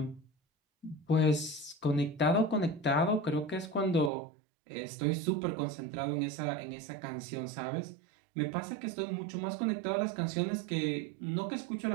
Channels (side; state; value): left; drops out; at 4.1 s